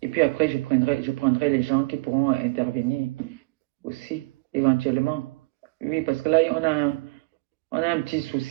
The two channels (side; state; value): left; quieter; 25.2 dB